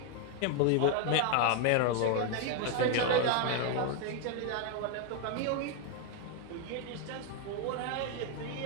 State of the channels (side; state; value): both; different; correlation 0.01